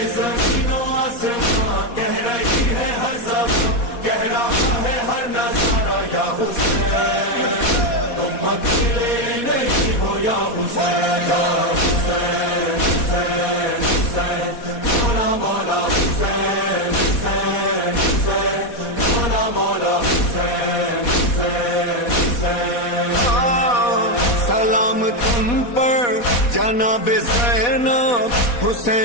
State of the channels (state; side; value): late; right; 4.2 ms